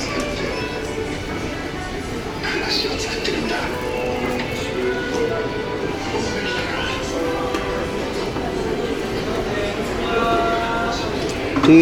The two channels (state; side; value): identical; both; correlation 1.00